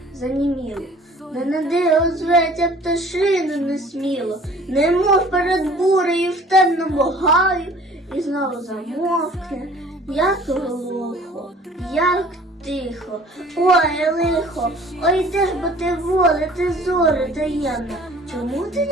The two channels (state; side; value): normal; both; correlation 0.50